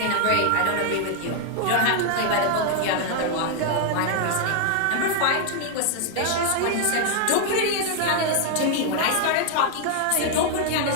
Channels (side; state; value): both; different; correlation 0.00